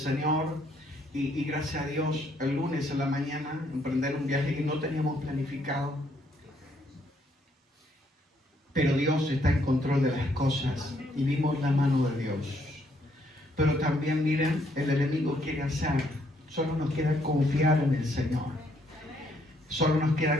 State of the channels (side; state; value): both; normal; correlation 0.70